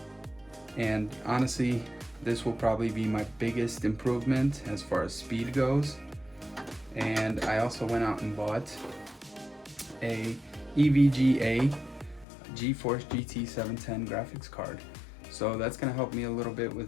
and honestly this will probably be my biggest improvement as far as speed goes. And I also went out and bought a EVGA GeForce GT 710 graphics card. So that's going to help me a little bit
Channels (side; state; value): right; drops out; at 12.2 s